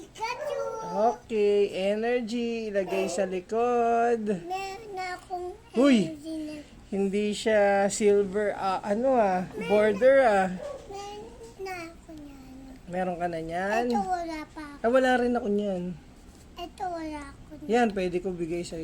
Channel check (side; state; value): both; identical; correlation 1.00